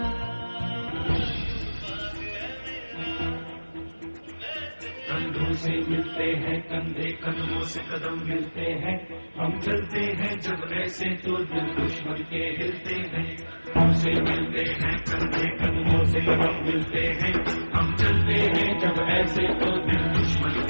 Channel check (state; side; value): inverted; both; correlation -1.00